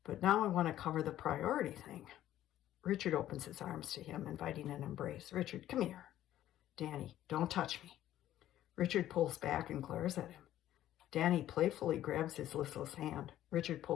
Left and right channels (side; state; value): right; quieter; 12.8 dB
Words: but now I want to cover the priority thing. Richard opens his arms to him, inviting an embrace. Richard, come here. Danny, don't touch me. Richard pulls back and glares at him. Danny playfully grabs his listless hand. Richard